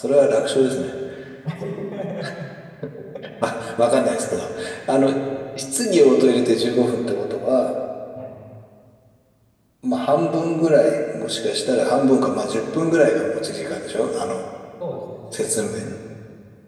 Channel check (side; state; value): both; identical; correlation 1.00